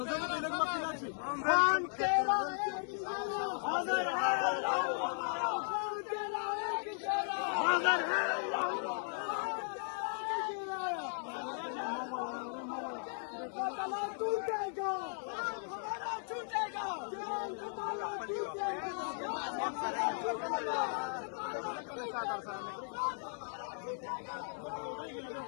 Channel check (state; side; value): silent; right; 53 dB below the other